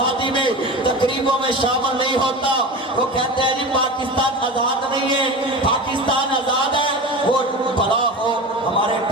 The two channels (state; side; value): normal; both; correlation 0.29